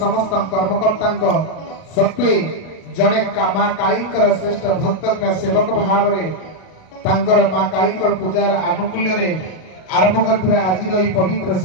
कर्मकर्ता सत्वे जड़े माँ काली श्रेष्ठ भक्त सेवक भाव में माँ काली पूजार आनुकूल्य आरंभ कर आज पवित्र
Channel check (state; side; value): late; right; 37 ms